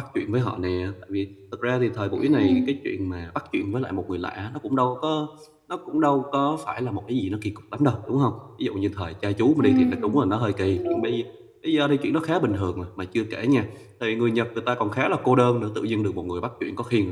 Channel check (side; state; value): both; identical; correlation 1.00